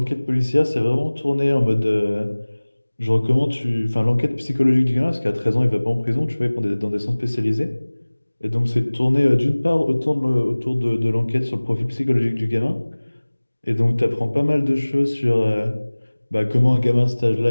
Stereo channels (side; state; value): both; inverted; correlation -1.00